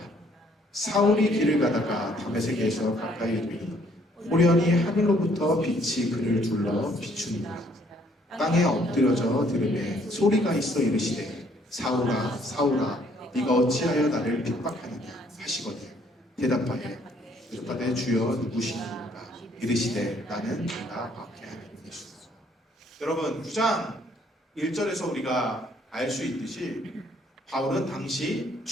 사울이 길을 가다가 다메섹에서 가까이 이르니 호련히 하늘로부터 빛이 그를 둘러 비추니라. 땅에 엎드려져 들으매 소리가 있어 이르시되 사울아 사울아 네가 어찌하여 나를 핍박하느냐 하시거늘 대답하여 이르되 주여 누구시니까 이르시되 나는 네가 박해하는 예수다. 여러분 9장 1절에서 우리가 알 수 있듯이 바울은 당시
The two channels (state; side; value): normal; both; correlation 0.64